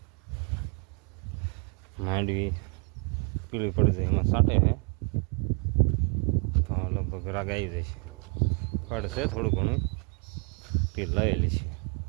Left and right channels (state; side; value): quieter; left; 34.8 dB